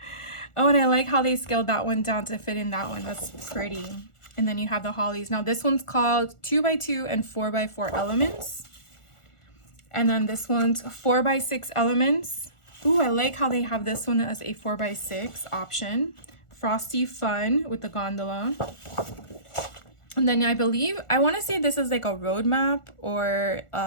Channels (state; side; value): late; right; 1.4 ms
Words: Oh, and I like how they scaled that one down to fit in that one. That's pretty. And then you have the hollies. Now this one's called 2x2 and 4x4 elements. And then this one's 4x6 elements. Ooh, I like how they have this one as a 4x6 option. Frosty Fun with the gondola. And then I believe, I want to say this is like a roadmap or